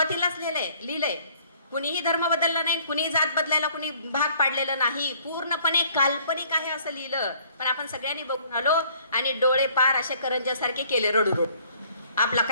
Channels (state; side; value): inverted; both; correlation -0.59